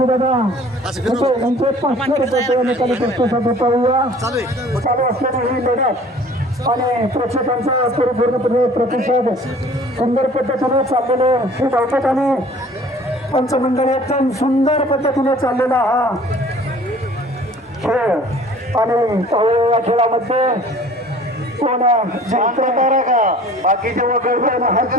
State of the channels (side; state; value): both; normal; correlation 0.49